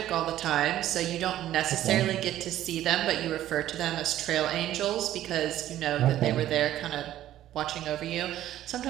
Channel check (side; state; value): left; quieter; 13.0 dB